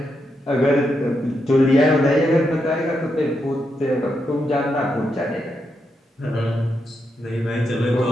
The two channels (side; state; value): both; normal; correlation 0.83